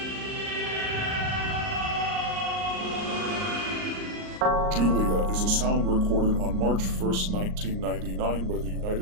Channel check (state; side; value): late; left; 38 ms